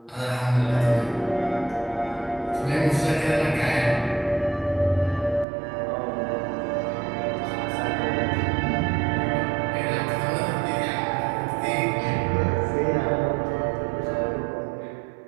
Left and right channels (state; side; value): drops out; left; at 5.5 s